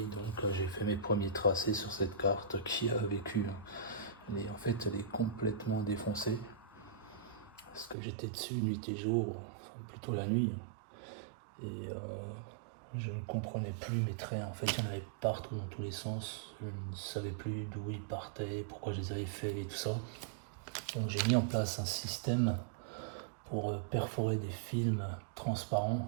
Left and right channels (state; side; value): drops out; left; at 8.0 s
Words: j'ai fait mes premiers tracés sur cette carte qui a vécu. En fait, elle est complètement défoncée parce que j'étais dessus nuit et jour, enfin plutôt la nuit, et je ne comprenais plus mes traits. En fait, il y en avait partout dans tous les sens. Je ne savais plus d'où ils partaient, pourquoi je les avais faits et tout ça. Donc j'ai mis en place un système pour perforer des films transparents